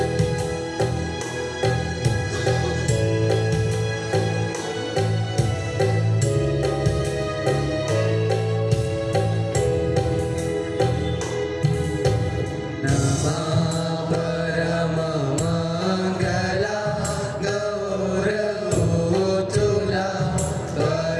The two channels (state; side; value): identical; both; correlation 1.00